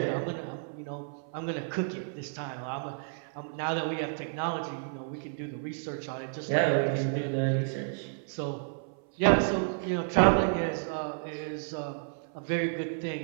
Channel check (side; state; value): left; silent; 57 dB below the other